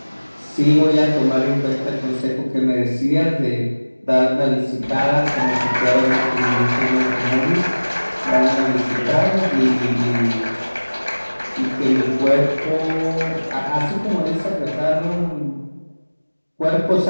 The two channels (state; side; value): inverted; both; correlation -1.00